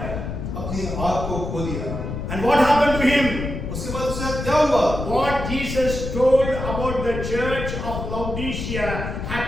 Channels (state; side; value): noise; left; rumble, 5 dB below the sound